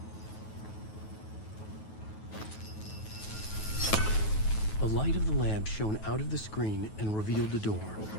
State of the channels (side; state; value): right; late; 9.3 ms